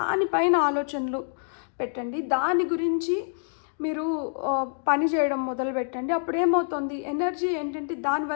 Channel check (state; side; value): silent; right; digital silence